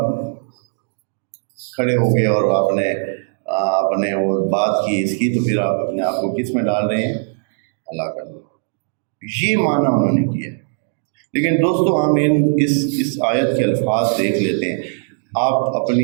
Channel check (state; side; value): silent; left; 66 dB below the other